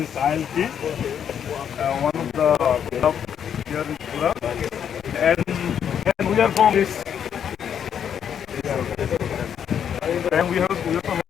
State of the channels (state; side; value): quieter; right; 8.5 dB